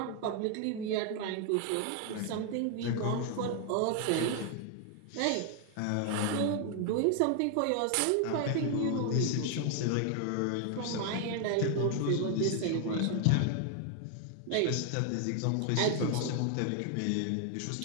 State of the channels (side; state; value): both; different; correlation 0.00